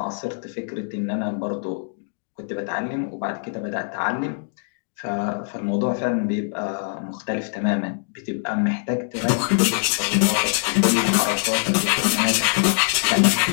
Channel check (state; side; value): silent; right; digital silence